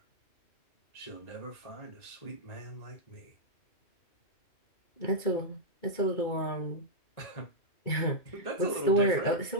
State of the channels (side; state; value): right; late; 2.3 ms